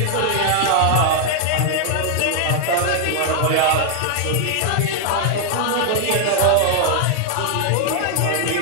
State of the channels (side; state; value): both; different; correlation 0.00